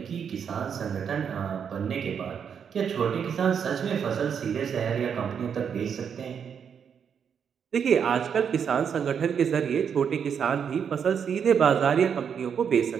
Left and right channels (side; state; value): left; quieter; 7.4 dB